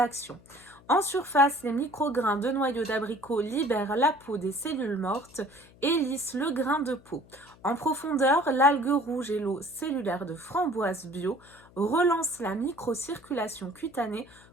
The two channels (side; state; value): left; noise; hum, 25 dB below the sound